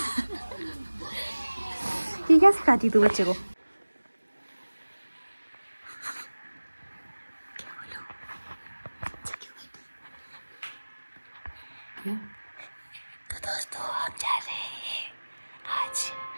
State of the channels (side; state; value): both; inverted; correlation -1.00